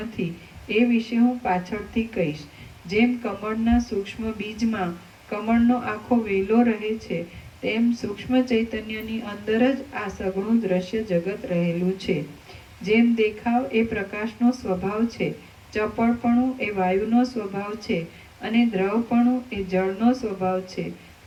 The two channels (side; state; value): both; identical; correlation 1.00